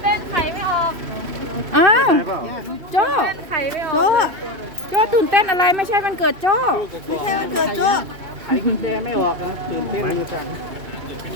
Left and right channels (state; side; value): late; left; 2.6 ms